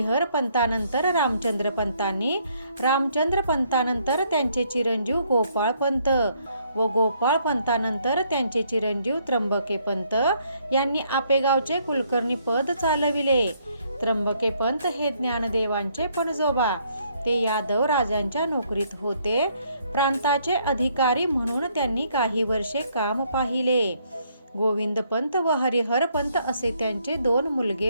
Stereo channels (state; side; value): inverted; both; correlation -0.69